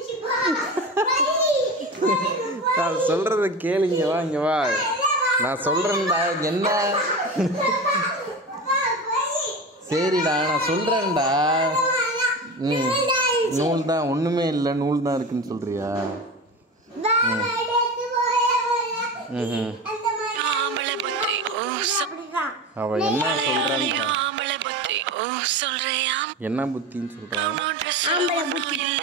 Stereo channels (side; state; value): both; normal; correlation 0.27